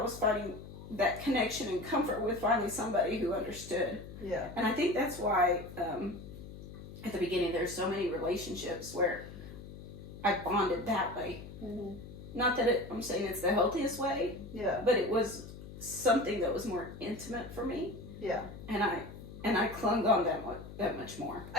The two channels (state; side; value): noise; left; hum, 13 dB below the sound